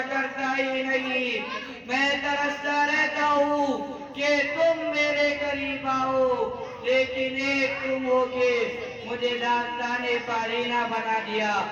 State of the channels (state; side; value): identical; both; correlation 1.00